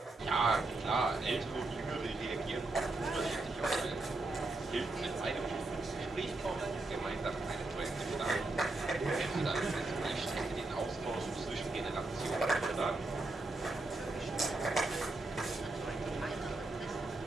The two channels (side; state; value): left; quieter; 3.1 dB